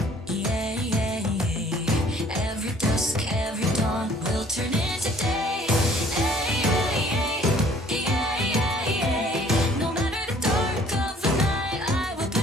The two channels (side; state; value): both; normal; correlation 0.57